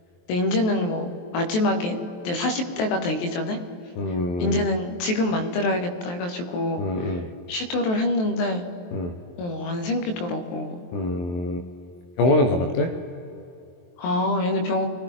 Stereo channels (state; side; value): late; right; 23 ms